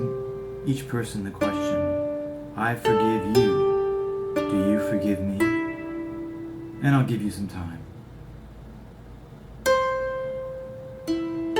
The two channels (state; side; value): identical; both; correlation 1.00